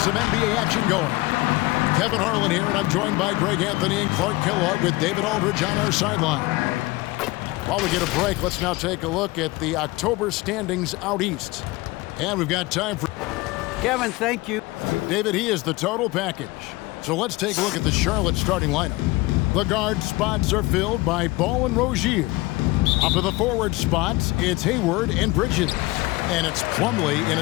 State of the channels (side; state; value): right; quieter; 21.3 dB